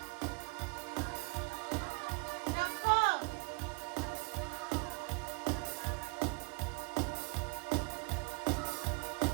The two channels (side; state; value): left; quieter; 29.5 dB